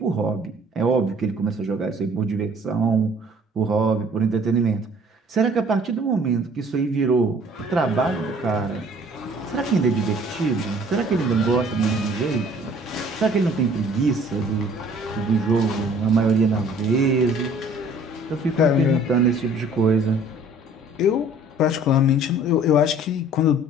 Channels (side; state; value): both; normal; correlation 0.54